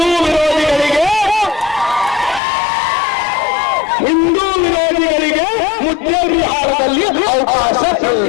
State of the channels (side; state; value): right; drops out; at 2.4 s